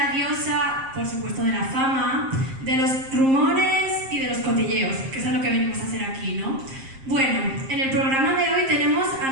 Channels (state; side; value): late; left; 7.5 ms